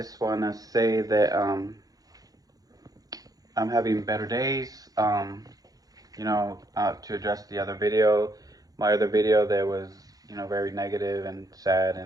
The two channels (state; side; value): late; left; 0.18 ms